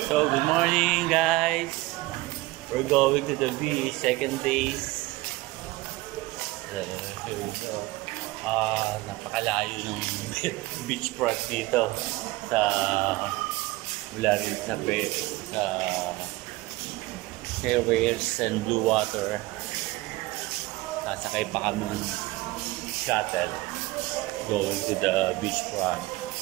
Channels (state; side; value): quieter; left; 20.2 dB